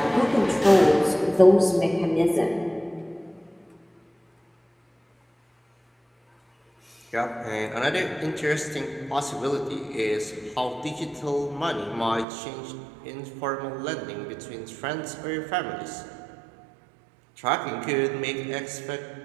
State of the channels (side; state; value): left; drops out; at 12.2 s